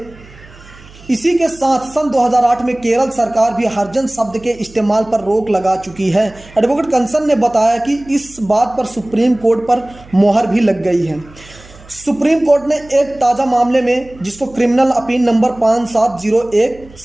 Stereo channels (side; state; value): right; noise; hum, 22 dB below the sound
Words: इसी के साथ सन 2008 में केरल सरकार भी हरिजन शब्द के इस्तेमाल पर रोक लगा चुकी है। एडवोकेट कंसन ने बताया कि इस बात पर सुप्रीम कोर्ट पर मोहर भी लग गई है। सुप्रीम कोर्ट ने एक ताज़ा मामले में, जिसको क्रिमिनल अपील नंबर